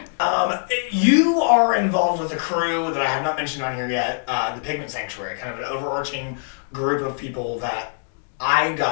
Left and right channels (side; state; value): right; silent; digital silence